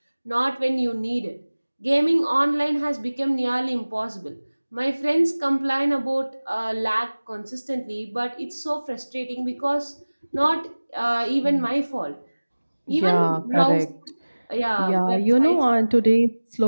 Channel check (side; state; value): both; inverted; correlation -1.00